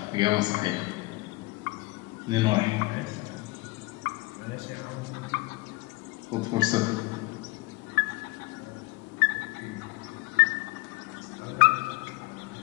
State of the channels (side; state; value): right; quieter; 23.5 dB